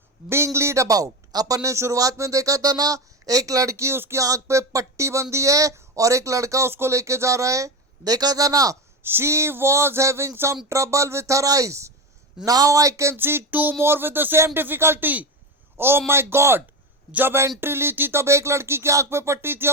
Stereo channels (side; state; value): both; normal; correlation 0.18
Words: being lead about. अपन ने शुरुआत में देखा था ना, एक लड़की उसकी आंख पे पट्टी बंधी है और एक लड़का उसको लेके जा रहा है, देखा था ना। She was having some trouble with her eyes. Now I can see two more with the same difficulty. Oh my God! जब एंट्री ली थी तब एक लड़की की आंख पे पट्टी थी,